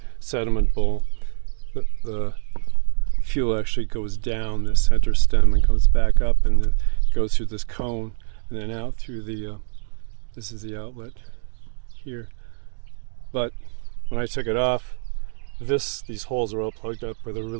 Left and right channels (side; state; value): left; silent; digital silence